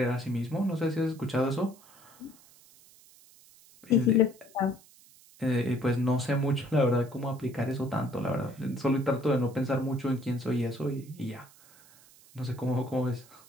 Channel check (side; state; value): right; noise; hiss, 25 dB below the sound